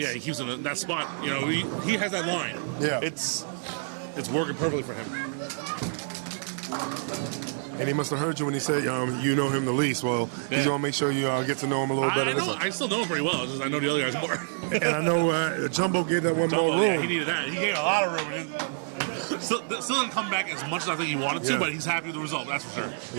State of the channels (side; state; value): left; silent; 60 dB below the other